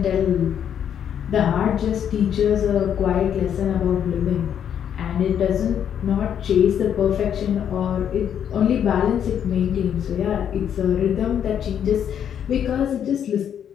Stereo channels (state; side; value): quieter; right; 9.0 dB